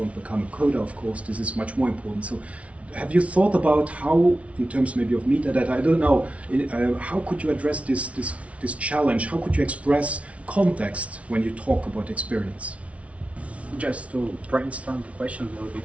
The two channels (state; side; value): late; left; 0.064 ms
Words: become a coder, of course, this is much more important. So have you thought about how, in terms maybe of metadata, I don't know, how could you address this challenge? How could you express context when you talk about experience? Just to brainstorm the question a little